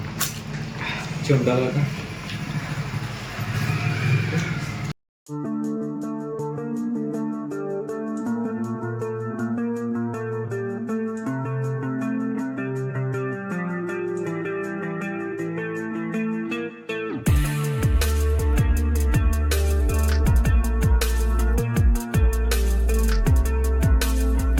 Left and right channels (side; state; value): both; identical; correlation 1.00